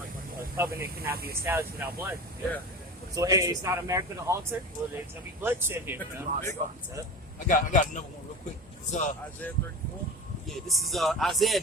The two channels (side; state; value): both; normal; correlation 0.30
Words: a covenant cannot be established without blood. Yeah. So hey, it's not America to alter. Well, there's gonna be bloodshed here. I got another one real quick. It's, Isaiah 34. Yeah, this is Isaiah